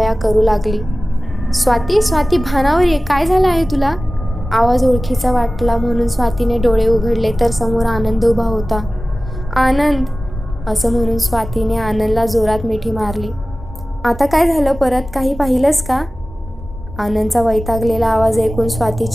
करू लागली. स्वाती, स्वाती भानावर ये, काय झालं आहे तुला? आवाज ओळखीचा वाटला म्हणून स्वातीने डोळे उघडले तर समोर आनंद उभा होता. आनंद, असं म्हणून स्वातीने आनंदला जोरात मिठी मारली. आता काय झालं परत, काही पाहिलंस का? आनंदचा वैतागलेला आवाज ऐकून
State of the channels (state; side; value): normal; both; correlation 0.97